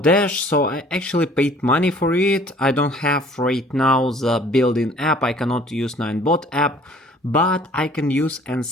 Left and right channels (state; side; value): normal; both; correlation 0.53